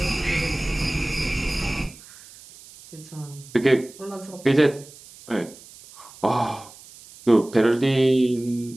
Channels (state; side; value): noise; right; hiss, 21 dB below the sound